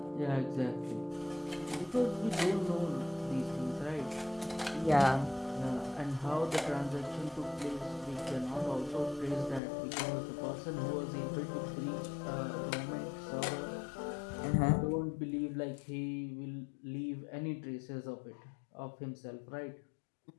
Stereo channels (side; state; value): right; drops out; at 9.6 s